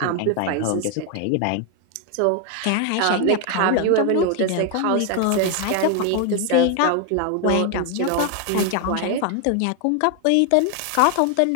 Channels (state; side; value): different; both; correlation 0.01